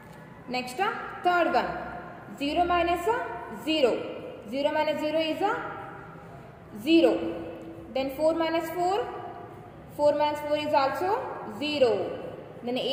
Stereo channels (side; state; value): both; identical; correlation 1.00